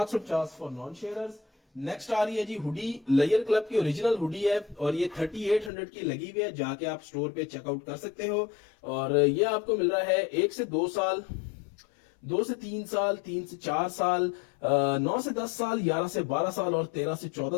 for non sharers. Next आ रही है जी हुडी, लेयर क्लब की ओरिजिनल हुडी है और ये 3800 की लगी हुई है, जाके आप स्टोर पे चेकआउट कर सकते हो। और ये आपको मिल रहा है 1 से 2 साल, 2 से 3 साल, 3 से 4 साल, 9 से 10 साल, 11 से 12 साल और 13 से 14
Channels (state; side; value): drops out; right; at 5.7 s